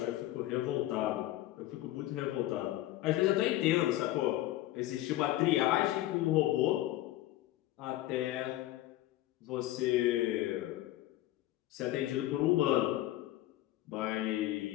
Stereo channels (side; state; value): right; quieter; 15.2 dB